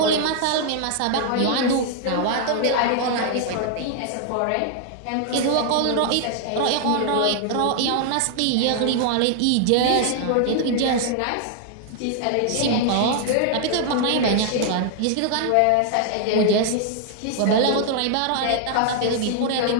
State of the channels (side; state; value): both; different; correlation 0.00